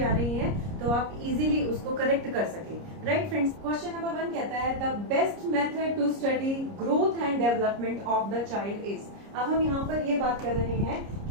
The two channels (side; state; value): left; late; 30 ms